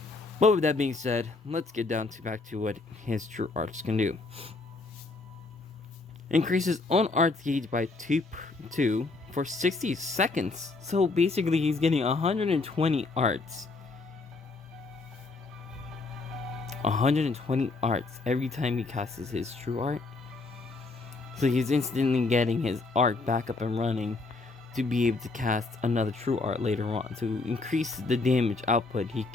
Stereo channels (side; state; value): right; quieter; 3.6 dB